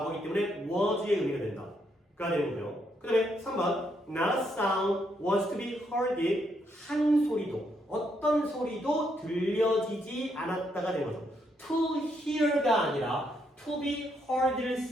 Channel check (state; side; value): normal; both; correlation 0.76